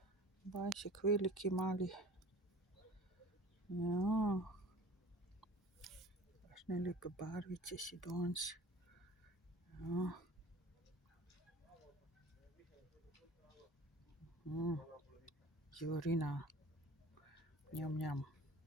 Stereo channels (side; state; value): both; normal; correlation 0.43